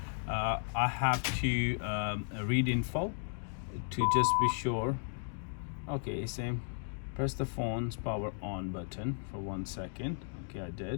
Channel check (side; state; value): right; silent; digital silence